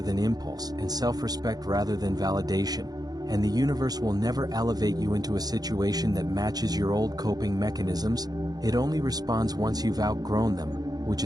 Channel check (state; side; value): late; left; 0.19 ms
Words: than impulse, and self-respect rather than validation. And the universe will never elevate you into a situation that matches your old coping mechanisms. It only responds once you've outgrown them, which